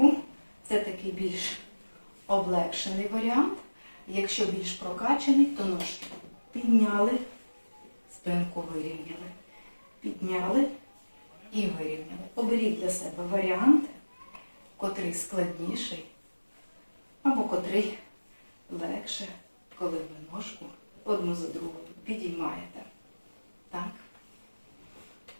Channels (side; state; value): both; inverted; correlation -1.00